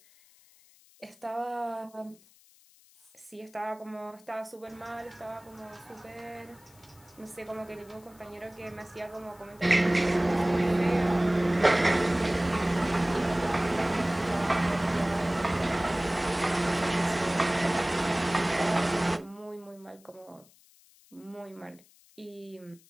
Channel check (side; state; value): left; noise; hiss, 28 dB below the sound